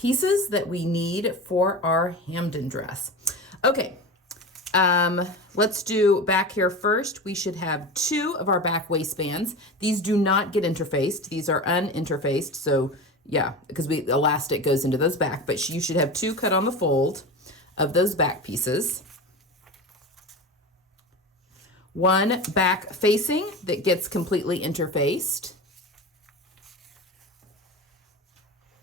that we need for our Hampden dress. Okay, Let's do back here first. We should have 2 of our back waistbands. These do not get interfaced. These are uninterfaced. So yeah, because elastic goes into those back, but you should have 2 cut on the fold of those back pieces. 1 back facing that gets completely interfaced.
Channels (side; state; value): both; normal; correlation 0.28